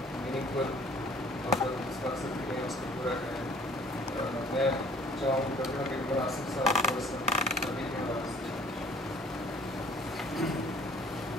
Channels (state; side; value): normal; both; correlation 0.55